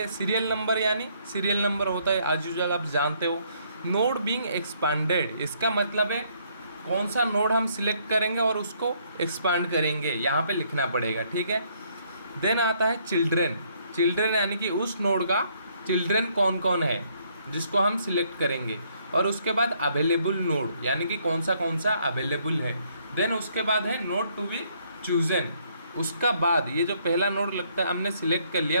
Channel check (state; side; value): inverted; both; correlation -0.68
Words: सीरियल नंबर यानी सीरियल नंबर होता है एज यूजुअल, आप जानते हो। नोड बीइंग एक्सपेंडेड, इसका मतलब है कौन सा नोड हम सिलेक्ट करेंगे और उसको एक्सपांड करेंगे, यहाँ पे लिखना पड़ेगा। ठीक है, देन आता है चिल्ड्रन। चिल्ड्रन यानी कि उस नोड का चिल्ड्रन कौन कौन है जिसको हम सिलेक्ट करेंगे, और उसके बाद अवेलेबल नोड यानी कि कौन सा अवेलेबल है। देन उसके बाद है नोड टू बी चूजन, उसका बाद ये जो पहला नोड लगता है हमने सिलेक्ट कर